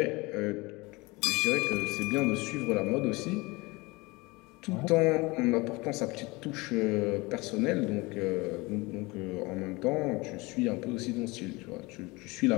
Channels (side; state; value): right; quieter; 23.9 dB